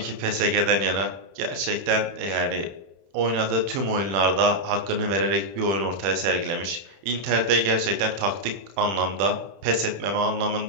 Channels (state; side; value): late; left; 31 ms